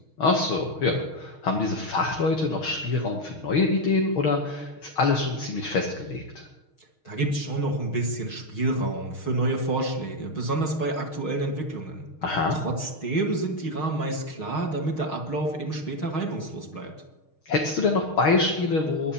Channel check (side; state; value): right; late; 6.4 ms